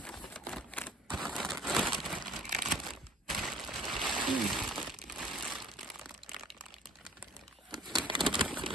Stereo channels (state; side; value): normal; both; correlation 0.53